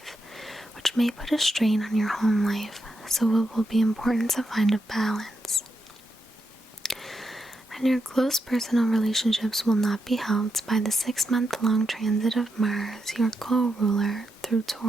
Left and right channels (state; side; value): normal; both; correlation 0.84